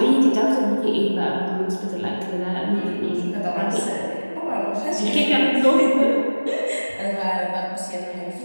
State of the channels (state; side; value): inverted; both; correlation -1.00